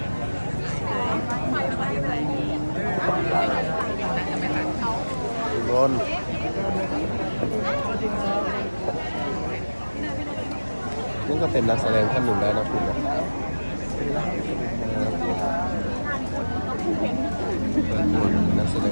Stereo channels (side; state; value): both; inverted; correlation -1.00